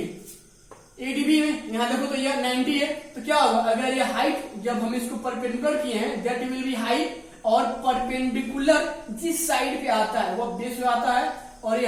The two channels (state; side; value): identical; both; correlation 1.00